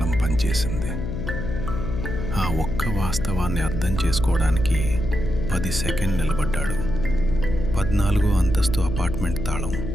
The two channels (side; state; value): left; noise; hum, 4 dB below the sound